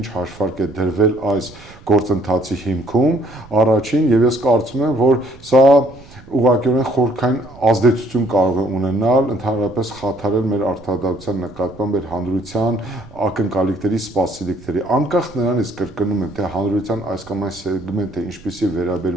հաշվարկ է դրվել այս գործընթացի հիմքում, առաջին, եւ ես կարծում եմ, որ սա ուղղակիորեն խորքային ազդեցություն կարող է ունենալ, ընդհանրապես խաթարել մեր արդարադատության նկատմամբ մեր հանրության ակնկալիքների, սպասելիքների, անկախ նրանից կրկնում եմ, թե հանրության այս կամ այն սեգմենտը ինչպիսի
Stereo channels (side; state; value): right; noise; rumble, 22 dB below the sound